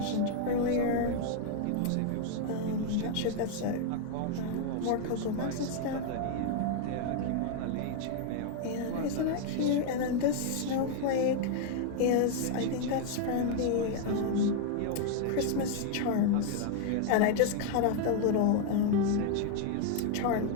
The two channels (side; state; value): both; different; correlation 0.01